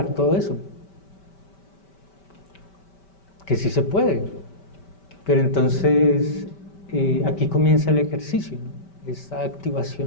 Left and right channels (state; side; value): late; right; 5.2 ms